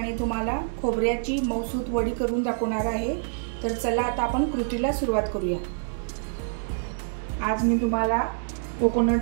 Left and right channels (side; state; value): left; silent; digital silence